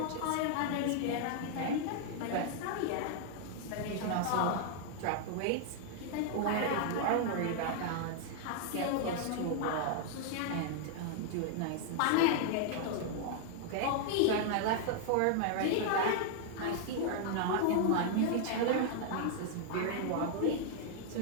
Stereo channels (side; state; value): both; different; correlation 0.00